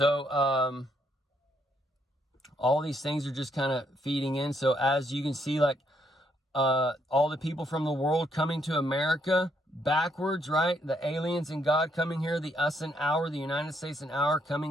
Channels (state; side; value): normal; both; correlation 0.73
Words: these things are just kind of feeding in. So as you can see, like, all the people from the world coming to America backwards, right? The aliens and God coming here, the us and our, the United States and our,